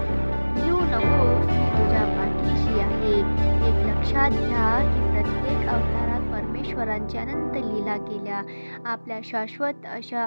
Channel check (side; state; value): both; inverted; correlation -1.00